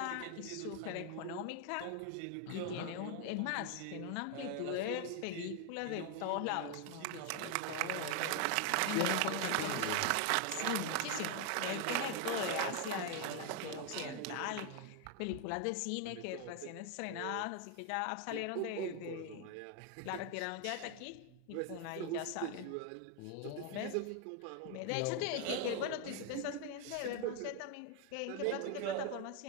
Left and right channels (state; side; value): different; both; correlation 0.01